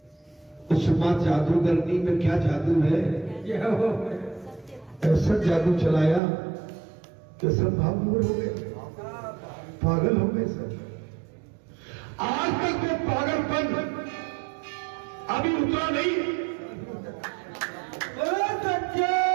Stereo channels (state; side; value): drops out; left; at 6.2 s